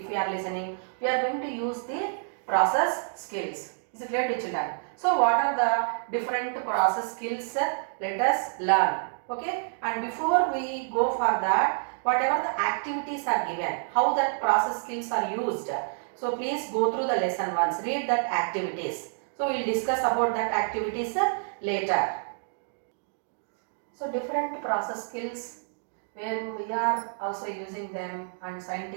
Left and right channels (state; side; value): silent; left; digital silence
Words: we are listening, we are going to use the process skills. Is it clear to children? So what are the different process skills? Let us learn. Okay, and before we go for that, whatever the activities are given, how that process skills are used, so please go through the lesson once, read that activities. So we will discuss about that activities later. So different process skills where we are also using them, and